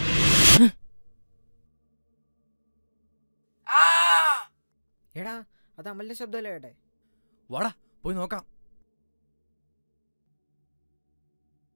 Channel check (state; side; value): inverted; both; correlation -1.00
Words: എടാ അത് അമലിന്റെ ശബ്ദമല്ലേ ഏട്ടെ? വാടാ പോയി നോക്കാം.